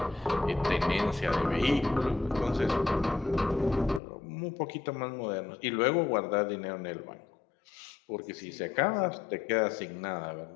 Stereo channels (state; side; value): drops out; right; at 4.0 s